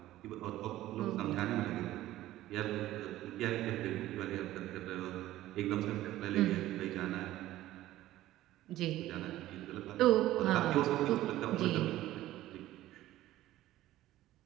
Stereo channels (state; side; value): quieter; left; 15.0 dB